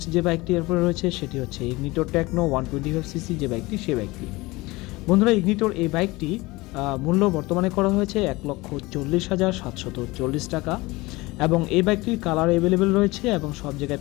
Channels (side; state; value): right; quieter; 21.7 dB